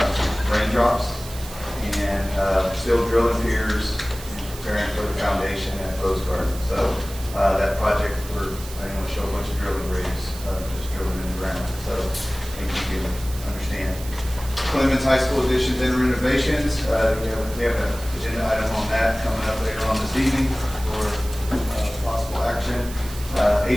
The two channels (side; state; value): right; noise; hiss, 14 dB below the sound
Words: raindrops and still drilling piers and preparing for the foundation at Rose Garden. So that project, I didn't want to show a bunch of drilling rigs, just drilling in the ground. So I think you can understand. Clemens High School additions and renovations. We have an agenda item on that coming up later on this evening for possible action.